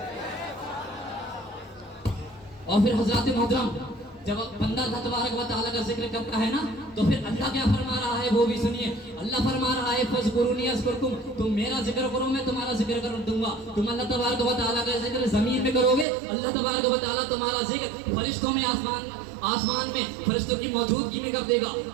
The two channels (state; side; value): drops out; left; at 16.1 s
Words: और फिर हजरत मोहतरम जब बंदा अल्लाह तबारक व तआला का जिक्र करता है ना तो फिर अल्लाह क्या फरमा रहा है वो भी सुनिए। अल्लाह फरमा रहा है फज़कुरूनी अज़कुरकुम, तुम मेरा जिक्र करो मैं तुम्हारा जिक्र कर दूंगा। तुम अल्लाह तबारक व तआला का जिक्र ज़मीन में करोगे, अल्लाह तबारक व तआला तुम्हारा जिक्र फरिश्तों में आसमान में फरिश्तों की मौजूदगी में कर देगा।